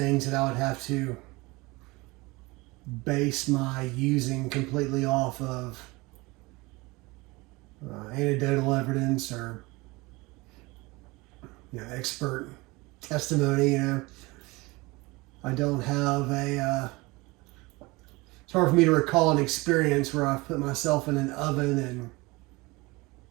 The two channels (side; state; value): left; quieter; 23.4 dB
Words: that I would have to base my using completely off of anecdotal evidence or expert testimony. I don't have a it's hard for me to recall an experience where I've put myself in an oven and